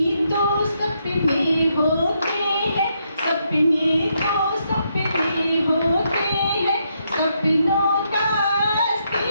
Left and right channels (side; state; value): both; inverted; correlation -0.78